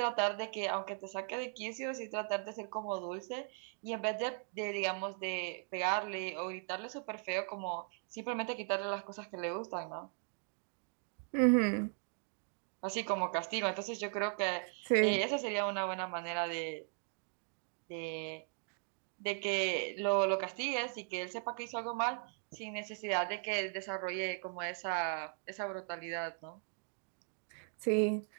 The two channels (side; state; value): left; silent; 52 dB below the other